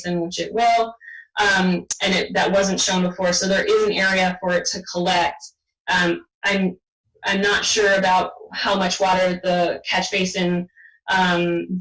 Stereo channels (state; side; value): identical; both; correlation 1.00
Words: which it will. And that wasn't shown before, so there is an area for it to collect. I'm not sure about how much water the catch basin